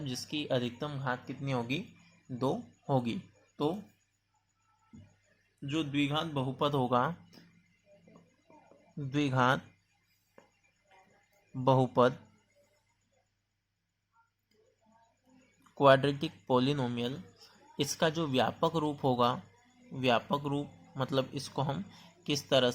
जिसकी अधिकतम घात कितनी होगी, 2 होगी। तो जो द्विघात बहुपद होगा, द्विघात बहुपद क्वाड्रेटिक पोलिनोमियल, इसका जो व्यापक रूप होगा, व्यापक रूप मतलब इसको हम किस तरह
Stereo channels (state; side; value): identical; both; correlation 1.00